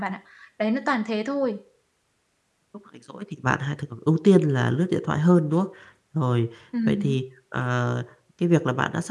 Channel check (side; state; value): both; identical; correlation 1.00